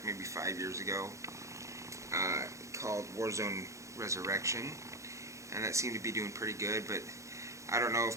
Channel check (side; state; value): left; late; 0.15 ms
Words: maybe 5 years ago, called Warzone Resurrection, and that seemed to be doing pretty good, but I don't know